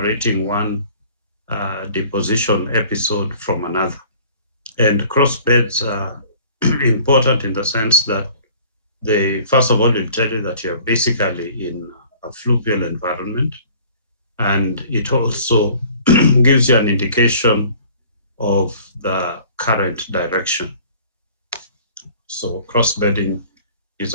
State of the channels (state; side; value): inverted; both; correlation -0.51